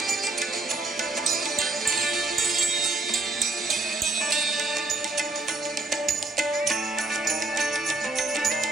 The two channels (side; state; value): left; quieter; 3.1 dB